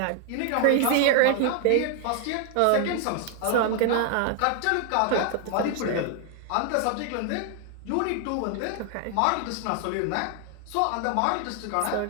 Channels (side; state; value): both; different; correlation 0.00